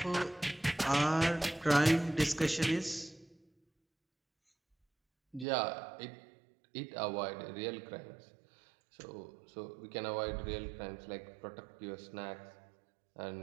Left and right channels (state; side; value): drops out; left; at 5.5 s